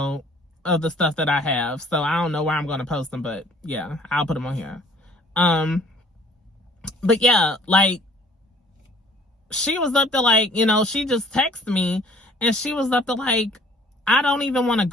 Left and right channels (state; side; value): normal; both; correlation 0.56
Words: of the stuff that I have. So I don't know where I'm going to post them, but yeah, I'll put them on here. But yeah, like, she was up to like, she just texted me and she was up to like, I don't even want to